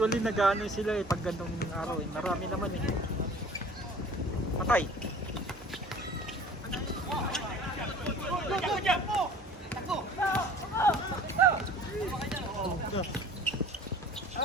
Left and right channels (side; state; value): both; normal; correlation 0.47